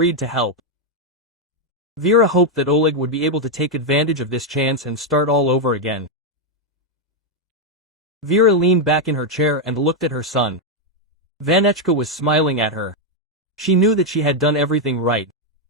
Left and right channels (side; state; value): both; normal; correlation 0.01